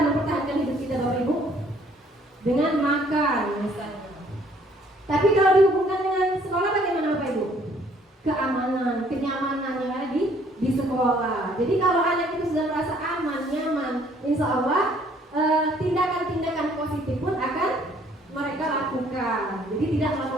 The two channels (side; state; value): both; normal; correlation 0.61